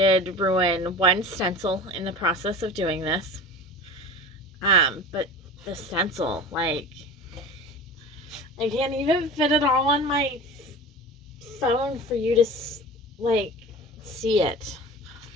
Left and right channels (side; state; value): both; normal; correlation 0.35